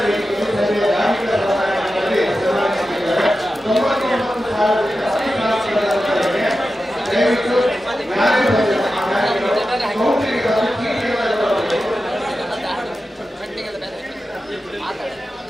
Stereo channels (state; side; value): normal; both; correlation 0.92